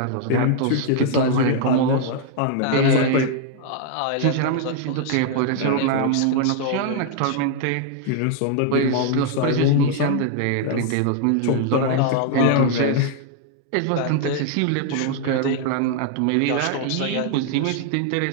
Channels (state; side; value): different; both; correlation -0.01